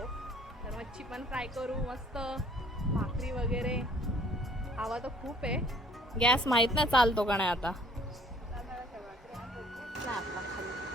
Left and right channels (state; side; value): normal; both; correlation 0.57